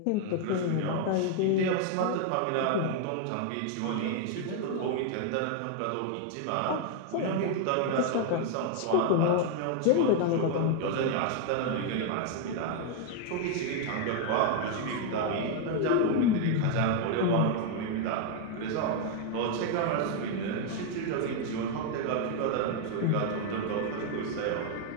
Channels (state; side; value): different; both; correlation 0.01